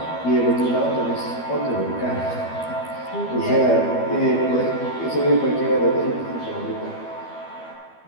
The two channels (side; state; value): right; late; 12 ms